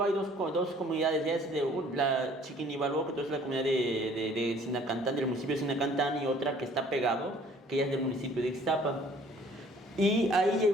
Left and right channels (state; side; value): normal; both; correlation 0.55